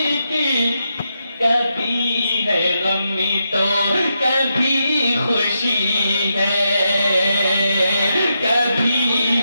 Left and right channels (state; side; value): inverted; both; correlation -0.84